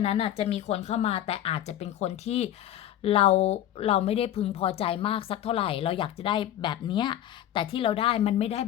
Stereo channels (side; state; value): right; quieter; 11.8 dB